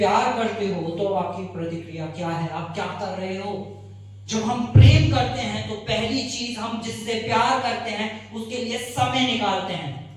करते हो तो आपकी प्रतिक्रिया क्या है, आप क्या कर रहे हो। जब हम प्रेम करते हैं तो पहली चीज, हम जिससे प्यार करते हैं उसके लिए समय निकालते हैं।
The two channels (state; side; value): identical; both; correlation 1.00